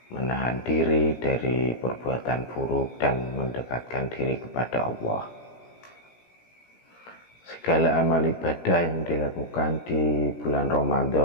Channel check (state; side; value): late; right; 17 ms